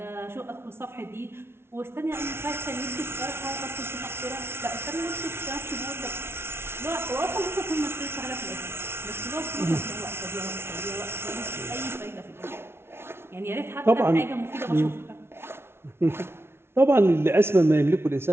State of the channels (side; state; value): left; late; 0.12 ms